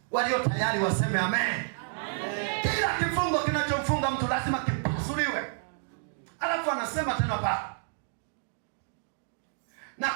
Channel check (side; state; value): left; silent; digital silence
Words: Walio tayari waseme amen. Amen. Kila kifungo kinachomfunga mtu lazima kipasuliwe. Alafu anasema tena pale, na